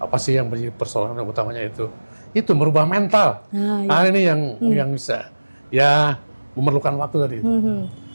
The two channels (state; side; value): inverted; both; correlation -1.00